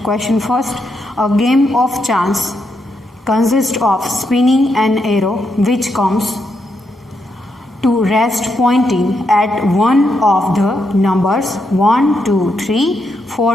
first. A game of chance consists of spinning an arrow which comes to rest pointing at one of the numbers 1, 2, 3,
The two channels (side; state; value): both; normal; correlation 0.81